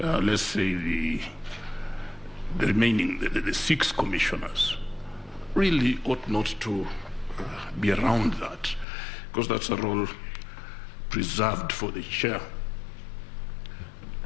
say the remaining, the 6 commissioners, really ought not to be around that, because that's a role preserved for the chair.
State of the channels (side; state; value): right; drops out; at 8.8 s